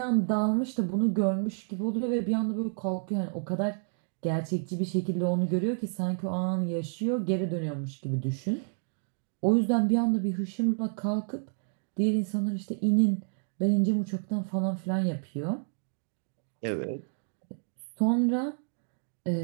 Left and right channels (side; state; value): left; silent; digital silence